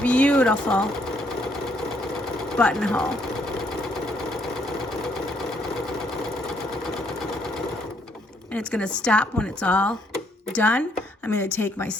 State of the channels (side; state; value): both; normal; correlation 0.70